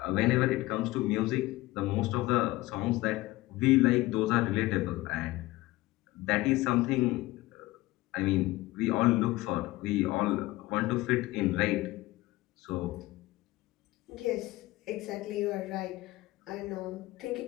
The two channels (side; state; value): right; quieter; 18.8 dB